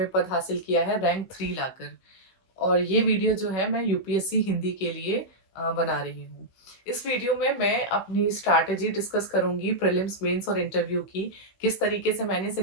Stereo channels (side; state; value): right; late; 16 ms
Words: पद हासिल किया है, रैंक 3 लाकर। और ये वीडियो जो है मैं यूपीएससी हिंदी के लिए बना रही हूँ। इस वीडियो में मैं अपनी स्ट्रैटेजी डिस्कस करूंगी प्रीलिम्स, मेंस और इंटरव्यू की, किस तरीके से मैंने इस